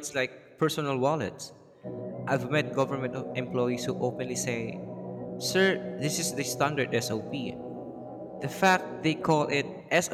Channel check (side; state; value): both; identical; correlation 1.00